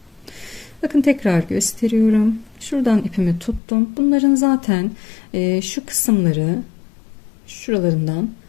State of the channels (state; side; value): drops out; right; at 3.6 s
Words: Bakın tekrar gösteriyorum. Şuradan ipimi tuttum. Bunların zaten şu kısımları şuralarından